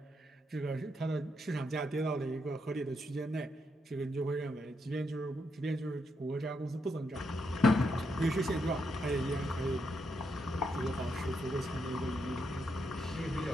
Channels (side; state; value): both; normal; correlation 0.80